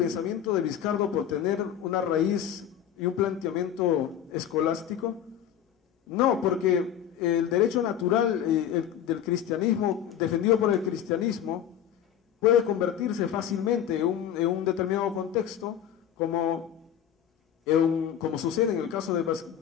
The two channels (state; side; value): quieter; right; 9.7 dB